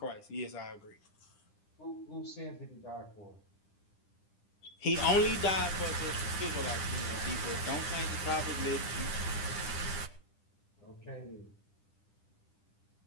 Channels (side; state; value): right; late; 10 ms